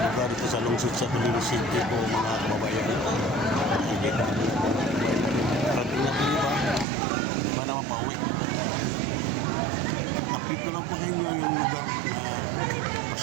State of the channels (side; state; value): left; drops out; at 6.9 s